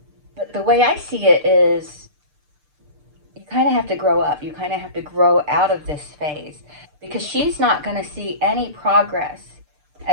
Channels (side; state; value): left; late; 6.7 ms